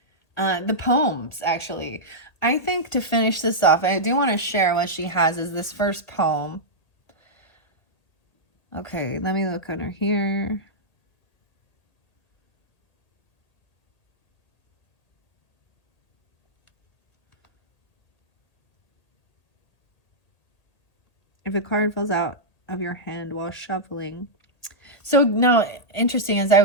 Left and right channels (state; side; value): late; right; 1.8 ms